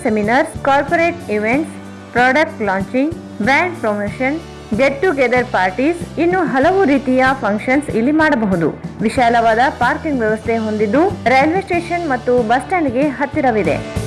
seminars, corporate events, product launching, brand promotion, get together parties, ಇನ್ನು ಹಲವು ರೀತಿಯ ಫಂಕ್ಷನ್ಸ್ ಇಲ್ಲಿ ಮಾಡಬಹುದು. ವಿಶಾಲವಾದ ಪಾರ್ಕಿಂಗ್ ವ್ಯವಸ್ಥೆ ಹೊಂದಿದ್ದು ರೈಲ್ವೆ ಸ್ಟೇಷನ್ ಮತ್ತು ಬಸ್ ಸ್ಟ್ಯಾಂಡ್ಗೆ ಹತ್ತಿರವಿದೆ.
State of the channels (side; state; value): both; identical; correlation 1.00